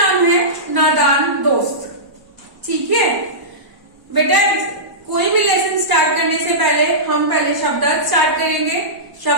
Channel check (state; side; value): late; left; 1.0 ms